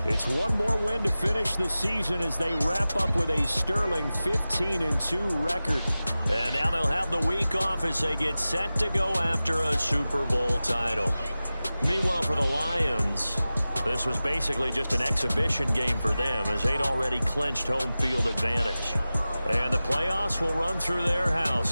it's one more win to finish the season as they wrap up with a sterling 15-2 record. And now they'll have the week off as they get set to go after a Super Bowl title. Meanwhile, for the Lions, this was basically just an exhibition game for them as they'd already clinched home field advantage. And the playoffs will run through their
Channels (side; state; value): both; inverted; correlation -0.96